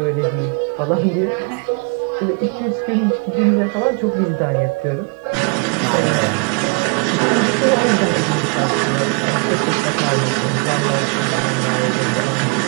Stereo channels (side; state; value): left; quieter; 33.8 dB